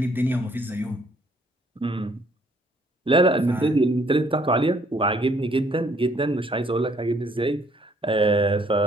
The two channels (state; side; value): normal; both; correlation 0.64